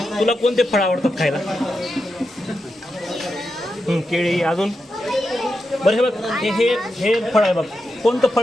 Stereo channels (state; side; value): normal; both; correlation 0.88